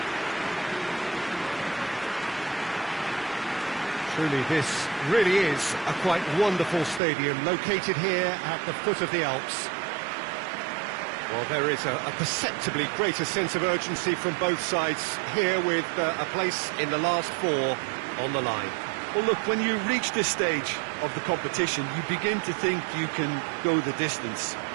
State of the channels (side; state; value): left; drops out; at 7.0 s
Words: Truly, this really is a quite wonderful stadium, located here at the foot of the Alps. Well, there is a perceptibly greater sense of urgency from both sides here, with a place in the last 4 on the line. Well, look, when you reach this stage of the competition, you begin to think you can go the distance.